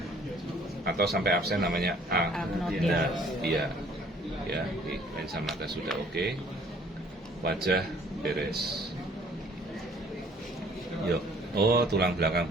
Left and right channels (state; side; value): normal; both; correlation 0.57